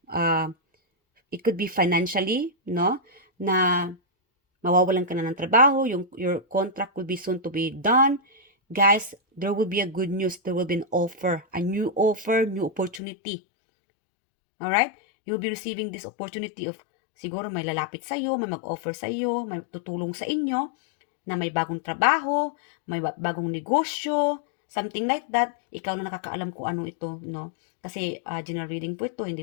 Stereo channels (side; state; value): right; drops out; at 13.0 s